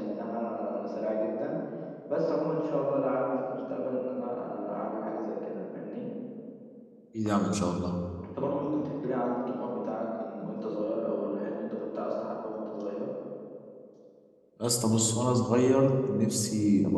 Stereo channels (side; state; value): both; identical; correlation 1.00